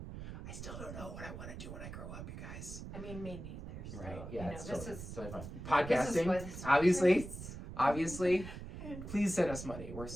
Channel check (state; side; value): noise; right; rumble, 10 dB below the sound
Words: I still don't know what I want to do when I grow up, you guys. I mean, me neither. So, Right? Yeah, it's totally fun. This is Podcasting, what it's obviously. Please send us money. We're